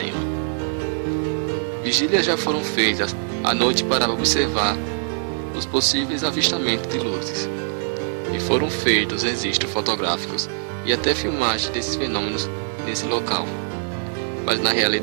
Vigílias já foram feitas à noite para observar os possíveis avistamentos de luzes, e foram feitos registros fotográficos e até filmagens desses fenômenos nesse local. Mas na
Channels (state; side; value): silent; left; digital silence